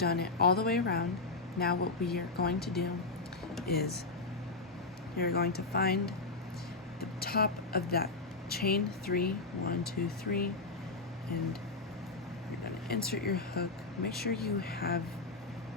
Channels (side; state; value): right; quieter; 3.6 dB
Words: it all the way around. Now what we are going to do is you're going to find the top of that chain 3, 1, 2, 3, and you're going to insert your hook. Make sure you have